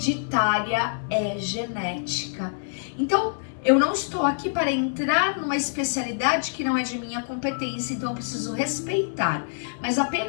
é genética. Então, eu não estou aqui para entrar numa especialidade que não é de minha competência, então eu preciso respeitar. Mas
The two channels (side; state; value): right; silent; 61 dB below the other